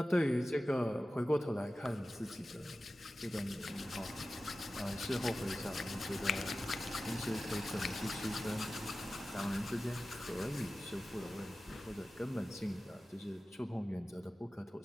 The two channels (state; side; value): normal; both; correlation 0.95